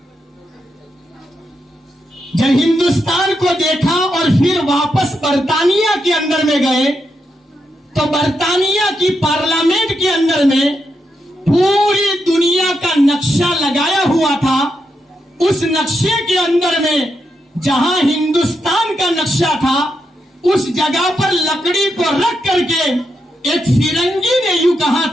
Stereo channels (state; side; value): normal; both; correlation 0.83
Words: جب ہندوستان کو دیکھا اور پھر واپس برطانیہ کے اندر میں گئے تو برطانیہ کی پارلیمنٹ کے اندر میں پوری دنیا کا نقشہ لگایا ہوا تھا. اس نقشے کے اندر میں جہاں ہندوستان کا نقشہ تھا اس جگہ پر لکڑی کو رکھ کر کے ایک فرنگی نے یوں کہا